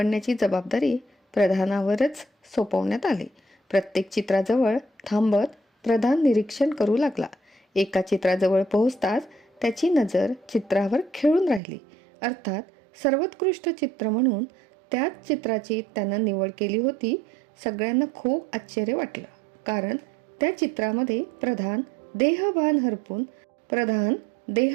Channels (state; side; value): drops out; left; at 11.6 s